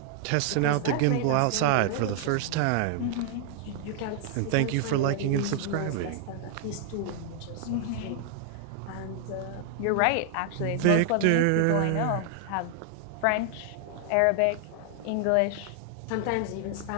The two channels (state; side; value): different; both; correlation 0.00